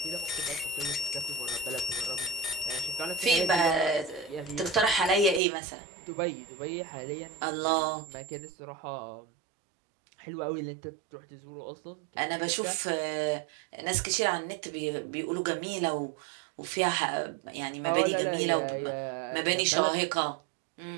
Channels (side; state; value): left; drops out; at 5.4 s